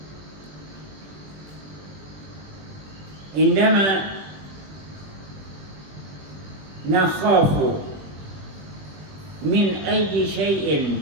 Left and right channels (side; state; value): left; late; 20 ms